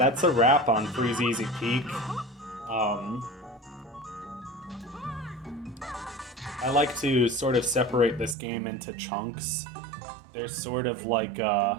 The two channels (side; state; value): left; drops out; at 8.3 s